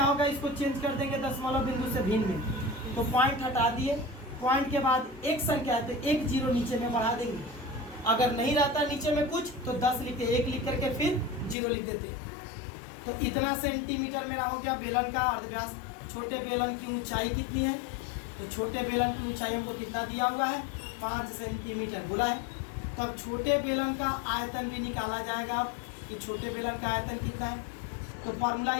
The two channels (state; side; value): drops out; right; at 11.6 s